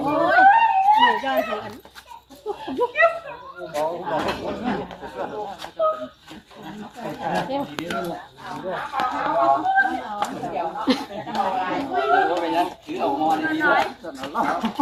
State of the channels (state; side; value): identical; both; correlation 1.00